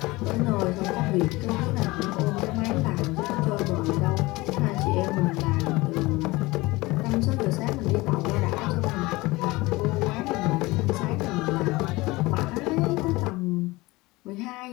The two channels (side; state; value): right; quieter; 21.5 dB